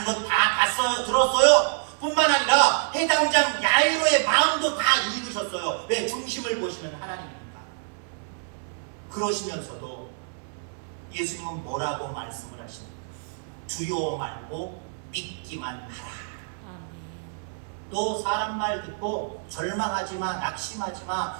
건 다 봤어요. 들었어요. 뿐만 아니라 해당장 야이로의 마음도 다 읽으셨어요. 왜? 중심을 보시는 하나님이니까. 그러시면서도 예수님은 뭐라고 말씀을 하십니까? 두려워 말고 믿기만 하라. 또 사람 말 듣고 절망하지 마, 낙심하지 마,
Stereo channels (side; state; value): left; silent; 60 dB below the other